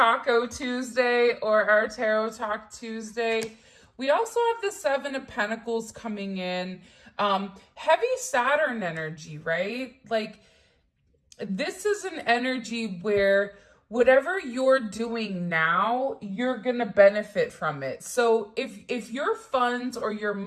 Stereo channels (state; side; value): identical; both; correlation 1.00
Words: Tuesday or our Tarot Talk Tuesday. We also have the Seven of Pentacles coming in. Heavy Saturn energy, right? Like, this is an energy where whatever you're doing now, you're gonna benefit from it. So if your funds or your